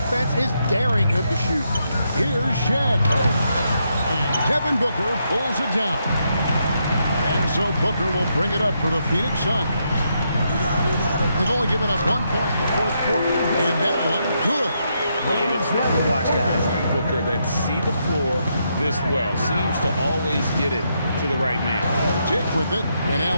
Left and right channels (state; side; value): inverted; both; correlation -0.79